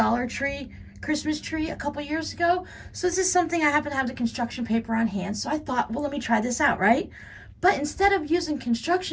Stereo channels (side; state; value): both; identical; correlation 1.00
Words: Tree Christmas tree a couple years ago. So this is something I happen to have the construction paper on hand. So I thought, well, let me try this out, right? But instead of using